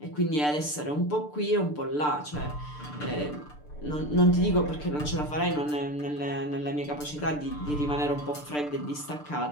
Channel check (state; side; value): late; right; 6.7 ms